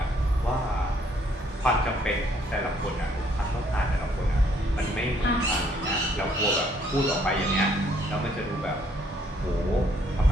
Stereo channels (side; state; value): both; normal; correlation 0.66